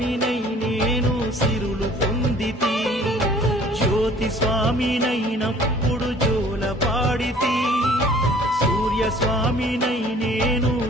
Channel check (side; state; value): both; normal; correlation 0.52